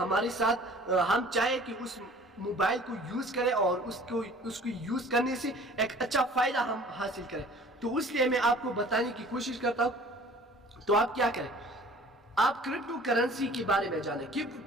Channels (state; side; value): normal; both; correlation 0.49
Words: ساتھ ہم چاہے کہ موبائل کو یوز کریں اور اس کو یوز کرنے سے ایک اچھا فائدہ ہم حاصل کریں. تو اس لیے میں آپ کو بتانے کی کوشش کرتا ہوں. تو آپ کیا کریں, آپ کرپٹو کرنسی کے بارے میں جانیں کہ